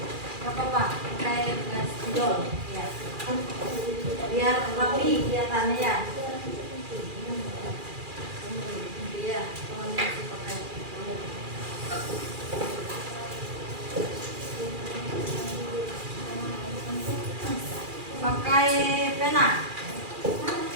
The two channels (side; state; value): left; late; 2.4 ms